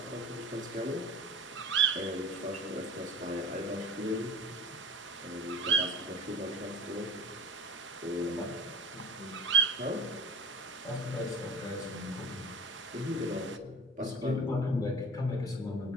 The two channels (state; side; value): normal; both; correlation 0.38